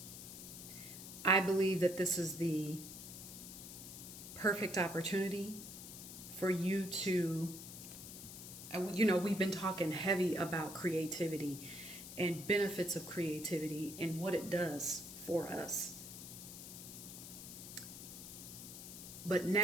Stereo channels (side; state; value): left; noise; hiss, 11 dB below the sound